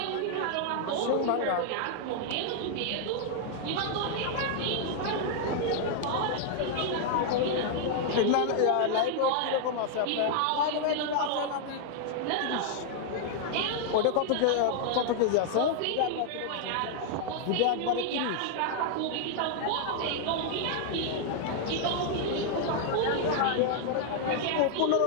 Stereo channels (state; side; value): different; both; correlation 0.00